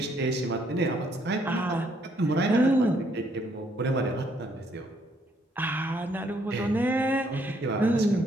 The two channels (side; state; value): both; normal; correlation 0.69